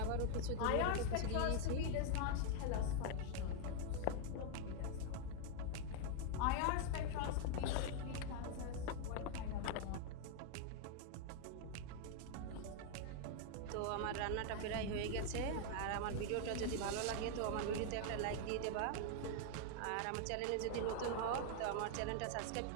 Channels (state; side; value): different; both; correlation 0.00